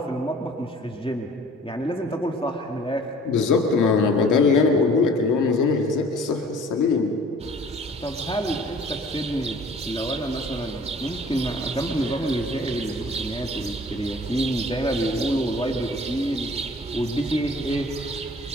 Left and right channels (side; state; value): both; normal; correlation 0.50